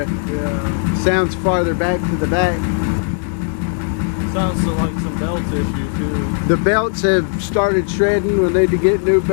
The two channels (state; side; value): silent; right; digital silence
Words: Yeah. Sounds farther back to the back. Sounds like some belt issue too. The belts have started shredding. We'll need to get new